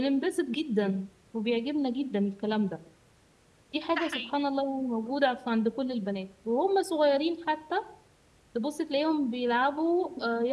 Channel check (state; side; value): identical; both; correlation 1.00